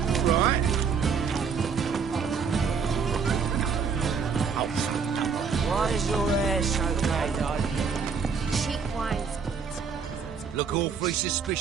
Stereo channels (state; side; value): quieter; left; 5.9 dB